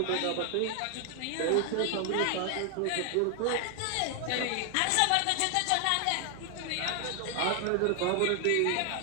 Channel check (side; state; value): both; different; correlation 0.00